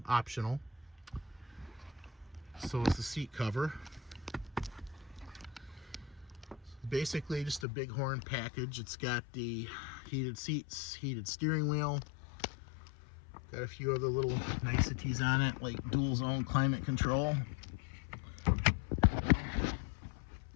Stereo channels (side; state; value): right; drops out; at 7.7 s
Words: optional. So is the seat cover. Basically just a bighorn package. It's got the heated seats, heated steering wheel. Got a few other little niceties on it, like dual zone climate control.